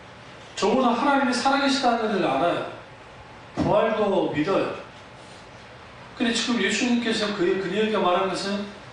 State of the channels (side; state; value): both; identical; correlation 1.00